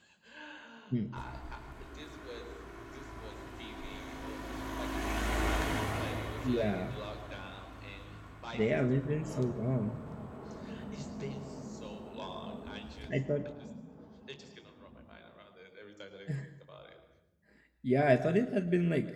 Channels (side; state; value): both; identical; correlation 1.00